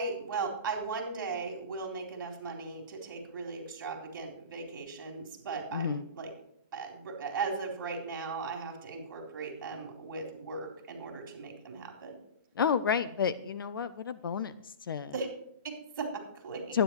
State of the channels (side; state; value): both; inverted; correlation -0.32